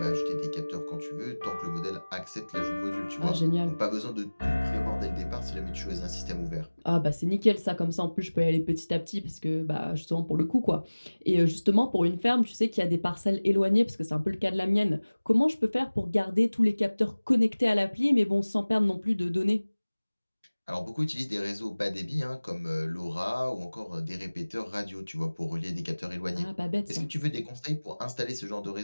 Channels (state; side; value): inverted; both; correlation -1.00